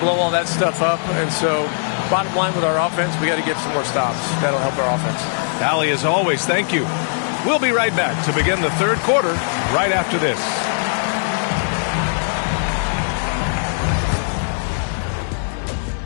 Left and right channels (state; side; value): silent; right; digital silence